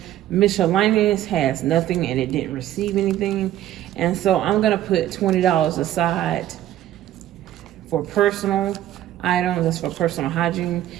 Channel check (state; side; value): quieter; left; 12.9 dB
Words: Miscellaneous has nothing, and it didn't receive anything. And so I'm gonna put $20 aside for personal items. That's for personal hygiene.